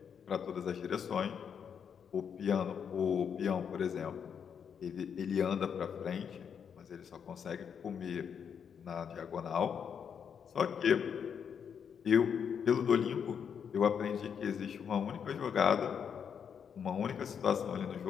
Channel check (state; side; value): quieter; right; 7.4 dB